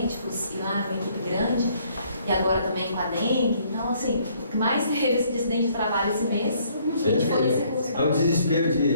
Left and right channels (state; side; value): inverted; both; correlation -0.65